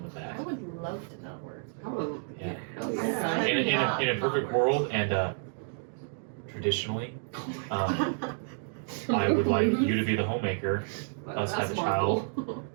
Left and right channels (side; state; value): left; silent; 56 dB below the other